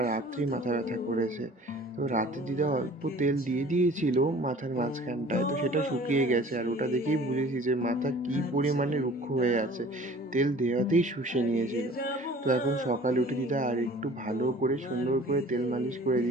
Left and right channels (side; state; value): both; normal; correlation 0.47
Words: রাত্রি মাথা ব্যথা করেছে। তো রাতে দিদা অল্প তেল দিয়ে দিয়েছিল মাথার মাঝখানটায়, তো সেটা শুকিয়ে গেছে। আর ওটা দেখেই বুঝেছি যে মাথা কি পরিমাণে রুক্ষ হয়ে আছে, তেল দেওয়াতেই শুষে নিয়েছিল। তো এখন সকালে উঠে দিদা আর একটু ভালো করে সুন্দর করে তেল মালিশ করে